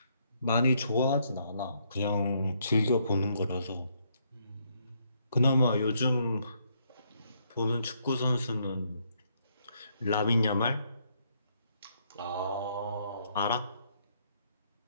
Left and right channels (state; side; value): inverted; both; correlation -0.73